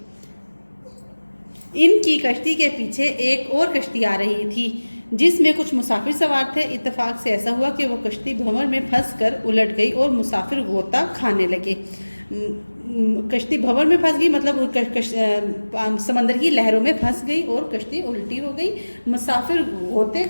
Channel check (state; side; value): inverted; both; correlation -1.00